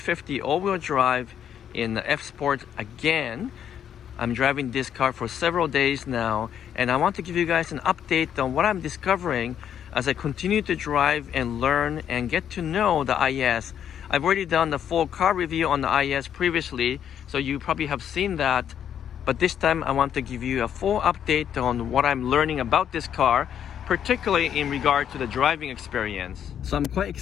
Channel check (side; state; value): right; quieter; 9.2 dB